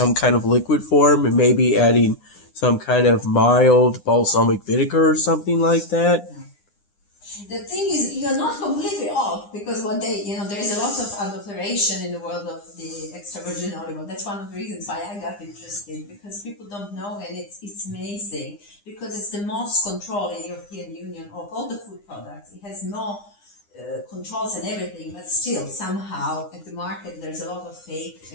kind of liquid form, and maybe adding some kind of mild balsamic vinegar or something like that. The thing is, you're not completely off, because what they, there is a lot of adulteration in the world of the extra virgin olive oil. That's one of the reasons why I got interested, because people don't know, and it's amazing, because it's the most control in the European Union of all the food products. It has no controls and everything, but still somehow at the market there's a lot of fake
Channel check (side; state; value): right; late; 9.9 ms